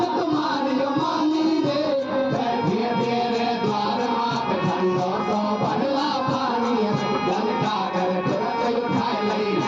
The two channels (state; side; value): identical; both; correlation 1.00